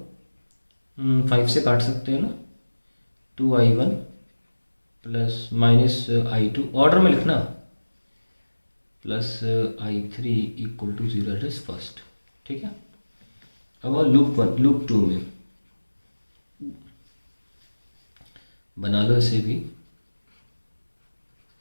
5 से काट सकते हैं ना, 2I1 plus minus I2, order में लिखना, plus I3 equal to 0, it is first. ठीक है, अब लूप 2 में बना लो इसे भी।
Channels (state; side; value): inverted; both; correlation -1.00